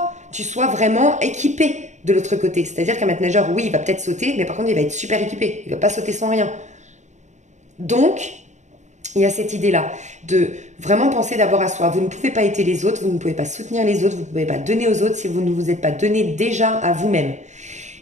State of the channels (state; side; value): late; left; 0.34 ms